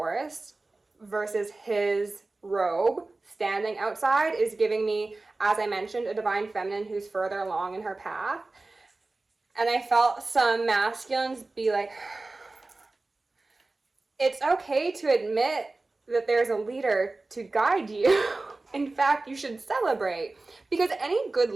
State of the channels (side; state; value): left; quieter; 3.3 dB